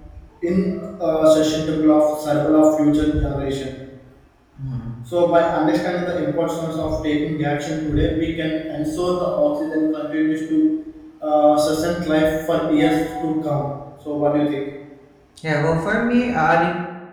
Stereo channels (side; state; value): both; identical; correlation 1.00